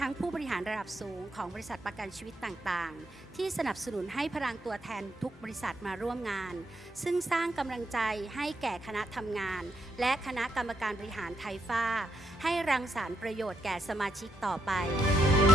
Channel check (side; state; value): both; normal; correlation 0.79